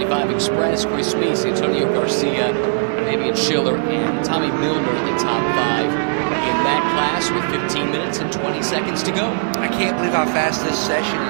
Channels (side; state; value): left; silent; digital silence